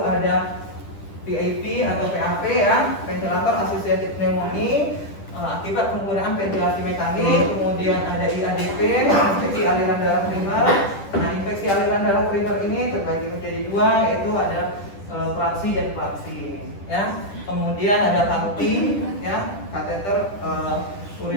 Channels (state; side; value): late; right; 10 ms